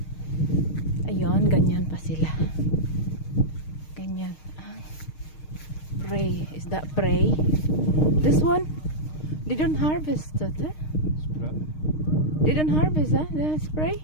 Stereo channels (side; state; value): right; late; 6.5 ms